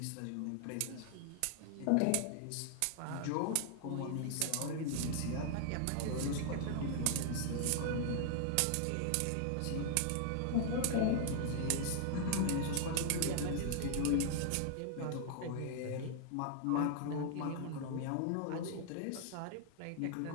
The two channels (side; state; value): both; different; correlation 0.00